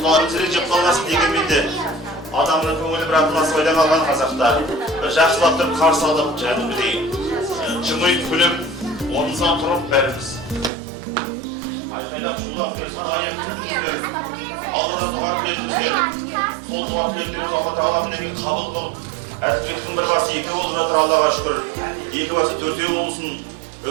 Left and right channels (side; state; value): left; drops out; at 10.7 s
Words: зірек жеп қалмасын дегенменде адамның көңілі бір атыласы ойда қалған қазақта бір жақсылап тұрып қарсы алып, жәдімдей жымиып күліп, орнымыздан тұрып бәріміз айқайлап шулап аяқ тілдіңіздер, Алладан дұға тіледіңіздер. Сол дұға тілектеріңіз Алла Тағала мінекей қабыл қылып, Әділбектің бір басы екі болып жатыр, Аллаға шүкір. Екі басы төртеу болсын,